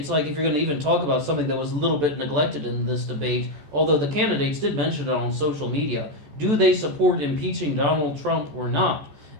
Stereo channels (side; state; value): left; late; 14 ms